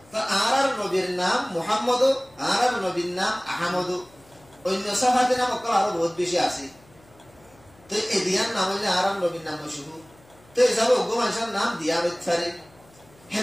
তা আর নবীর নাম মুহাম্মদ আর নবীর নাম আহমদ অন্য সাহাবাদের নাম আরো বহুত বেশি আছে তো এই দিয়ার নাম হইলে আরাম নবীর নাম মশহুর তো এসব ওগো মানুষের নাম দিয়া হইতে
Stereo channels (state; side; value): noise; left; hum, 28 dB below the sound